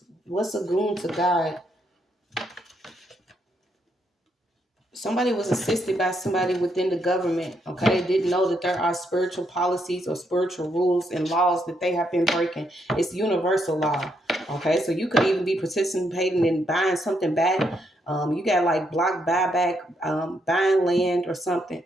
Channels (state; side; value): normal; both; correlation 0.76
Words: What's a goon to God? Somebody was assisted by somebody within the government, okay? Didn't know that there are spiritual policies or spiritual rules and laws that they have been breaking. It's universal law, okay? So you could even be participating in buying something back. You got like block buyback, buying land or something.